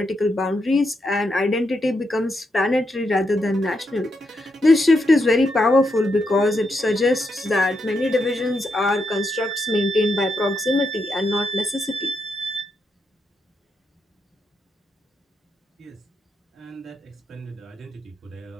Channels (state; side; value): normal; both; correlation 0.82